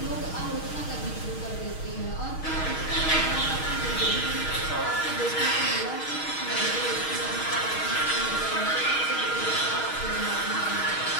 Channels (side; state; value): right; late; 6.4 ms